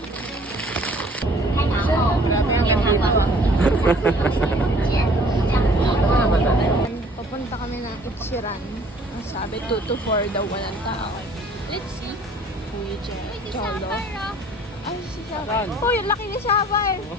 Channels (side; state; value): both; normal; correlation 0.54